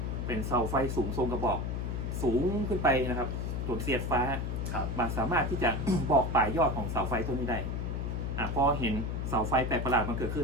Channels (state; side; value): noise; left; hum, 2 dB below the sound